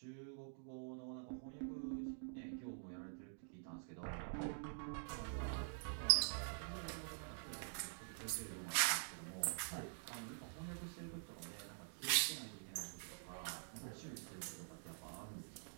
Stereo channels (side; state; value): left; silent; digital silence